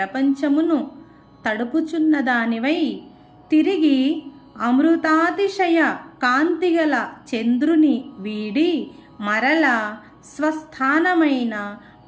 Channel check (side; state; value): both; identical; correlation 1.00